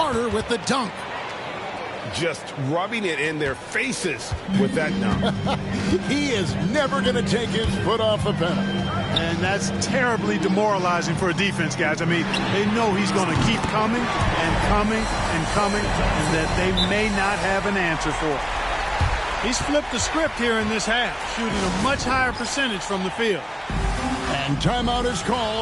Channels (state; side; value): identical; both; correlation 1.00